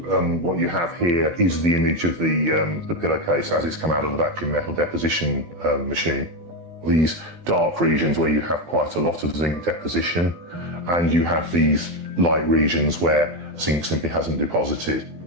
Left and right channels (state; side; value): late; left; 12 ms